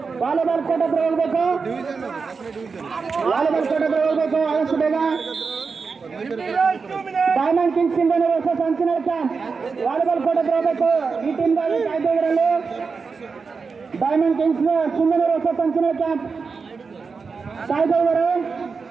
ವಾಲಿಬಾಲ್ ಕೋರ್ಟ್ ಹತ್ರ ಹೋಗ್ಬೇಕು. ಆದಷ್ಟು ಬೇಗ. Diamond Kings Singanuru versus Anchinal camp volleyball court ಹತ್ರ ಹೋಗ್ಬೇಕು. ಈ ಟೀಮ್ಗಾಗಿ ಕಾಯ್ದೆ ಇದರಲ್ಲಿ Diamond Kings Singanuru versus Anchinal camp ಕಾಯ್ದೆ ಇದ್ದಾರೆ.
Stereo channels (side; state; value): left; quieter; 5.0 dB